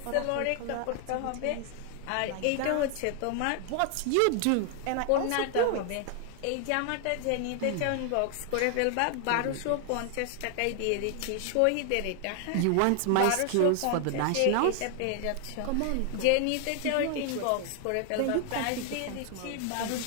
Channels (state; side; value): different; both; correlation 0.00